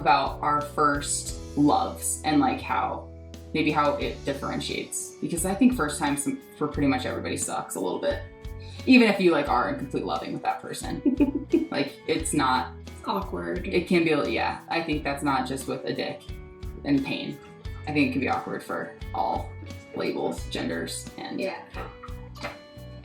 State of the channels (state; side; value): identical; both; correlation 1.00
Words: our first loves and like how it differentiates, because I think first time for pretty much everybody sucks a little bit, even if you like are in complete loving with that person. Like, it's not awkward. It can be, yeah. I think that's not just with a dick and pain. I think it can be awkward for all labels, genders, and